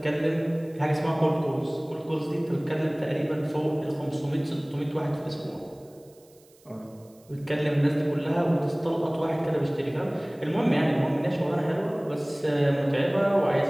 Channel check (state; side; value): noise; right; hiss, 30 dB below the sound